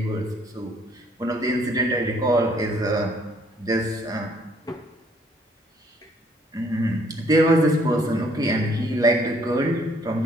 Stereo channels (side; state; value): both; normal; correlation 0.64